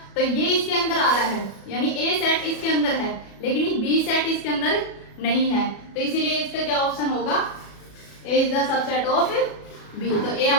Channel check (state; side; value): late; right; 37 ms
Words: तो ये इसके अंदर आ रहा है, यानी ए सेट इसके अंदर है लेकिन बी सेट इसके अंदर नहीं है, तो इसीलिए इसका क्या ऑप्शन होगा, A is the subset of B. तो ए